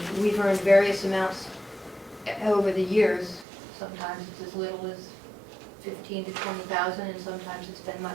we've earned various amounts over the years. Sometimes it's as little as $15,000 to $20,000, and sometimes it's been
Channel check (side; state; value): left; drops out; at 3.5 s